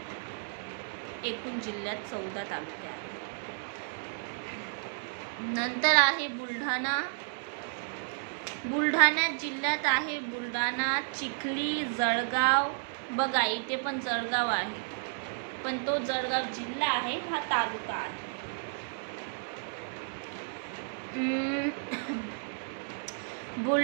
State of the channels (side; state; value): left; silent; 56 dB below the other